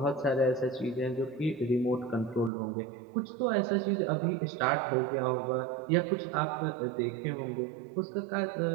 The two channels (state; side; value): drops out; left; at 2.5 s